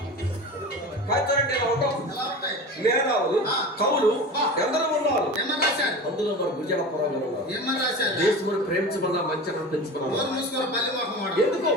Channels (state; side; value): normal; both; correlation 0.31